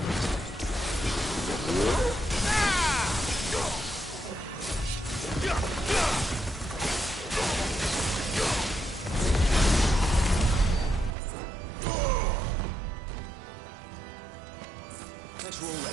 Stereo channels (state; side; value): drops out; left; at 11.2 s